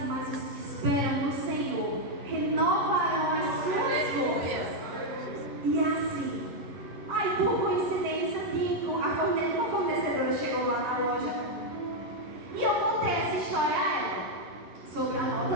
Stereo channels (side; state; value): left; late; 11 ms